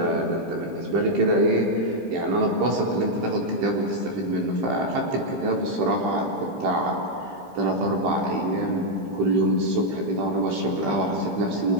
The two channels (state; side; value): late; left; 15 ms